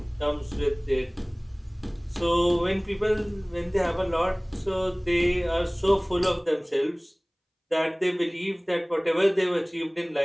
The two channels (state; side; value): identical; both; correlation 1.00